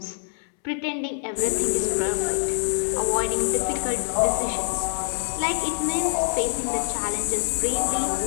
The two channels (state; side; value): silent; right; 62 dB below the other